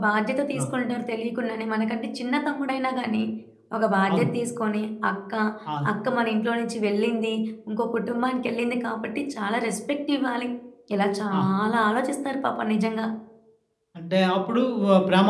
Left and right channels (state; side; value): identical; both; correlation 1.00